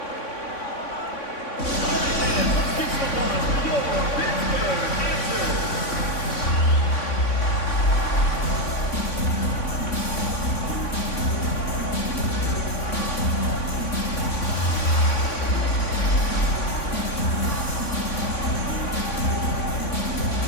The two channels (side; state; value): right; late; 3.5 ms